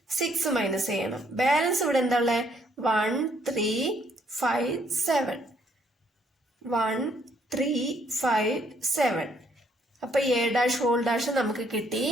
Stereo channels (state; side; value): normal; both; correlation 0.68